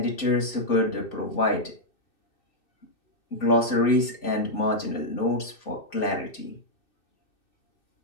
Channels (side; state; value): right; late; 2.6 ms